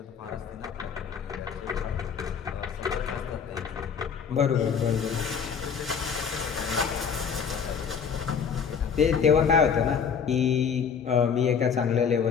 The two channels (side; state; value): right; quieter; 6.7 dB